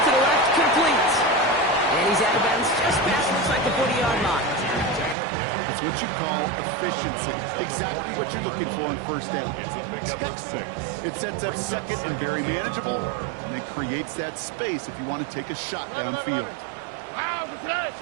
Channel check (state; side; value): drops out; left; at 5.2 s